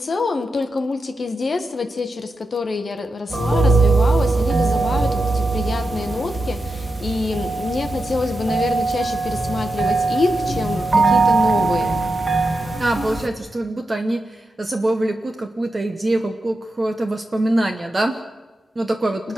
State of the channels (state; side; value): normal; both; correlation 0.88